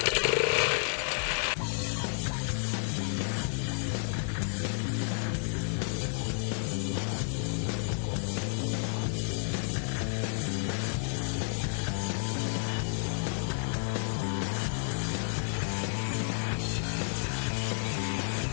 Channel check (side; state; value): right; silent; digital silence